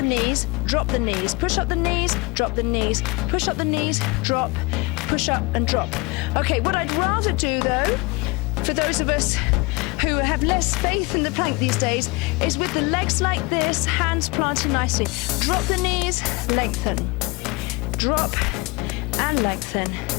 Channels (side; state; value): right; quieter; 25.5 dB